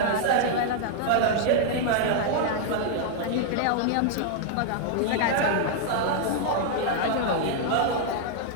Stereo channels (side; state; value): both; different; correlation -0.01